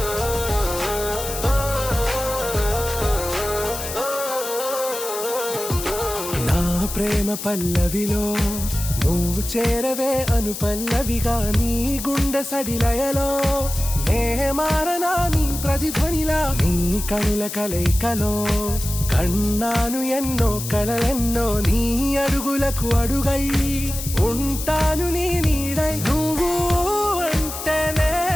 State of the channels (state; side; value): noise; left; hiss, 8 dB below the sound